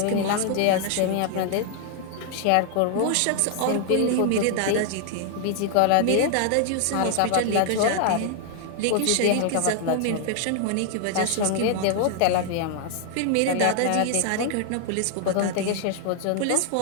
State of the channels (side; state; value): both; different; correlation 0.00